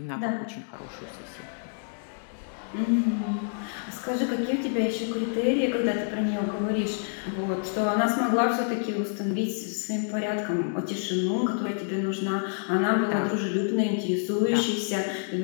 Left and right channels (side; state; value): right; silent; digital silence